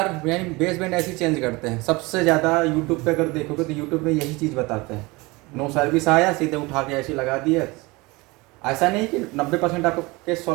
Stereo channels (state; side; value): quieter; left; 23.8 dB